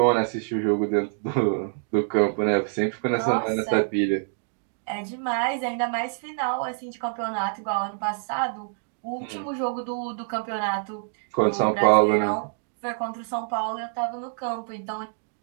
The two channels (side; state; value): left; silent; digital silence